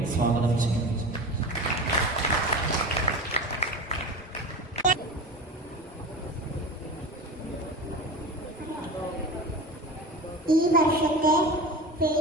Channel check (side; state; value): both; normal; correlation 0.30